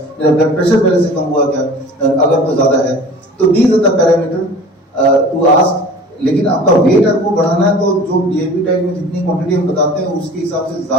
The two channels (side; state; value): both; normal; correlation 0.42